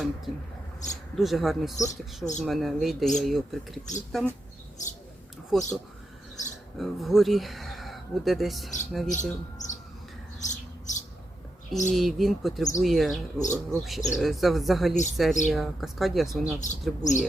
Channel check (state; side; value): normal; both; correlation 0.85